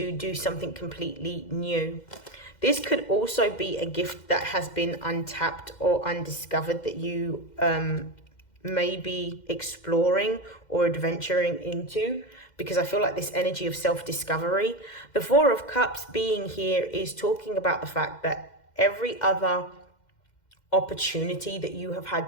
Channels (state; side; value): late; right; 2.1 ms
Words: do something completely new. This could also be a gift that has been untapped or undiscovered that you may be exploring or adventuring into, because I feel like this energy of self-discovery. The Four of Cups being here is talking about the fact that every other opportunity that you have